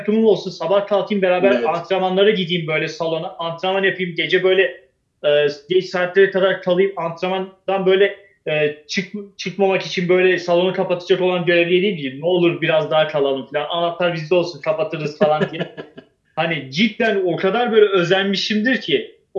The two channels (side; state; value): both; identical; correlation 1.00